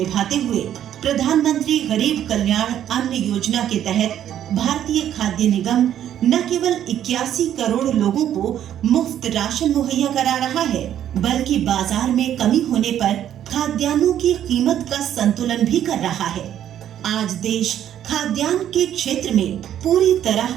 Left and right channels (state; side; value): quieter; left; 10.7 dB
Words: हुए प्रधानमंत्री गरीब कल्याण अन्न योजना के तहत भारतीय खाद्य निगम न केवल 81 करोड़ लोगों को मुफ्त राशन मुहैया करा रहा है, बल्कि बाजार में कमी होने पर खाद्यान्नों की कीमत का संतुलन भी कर रहा है। आज देश खाद्यान्न के क्षेत्र में पूरी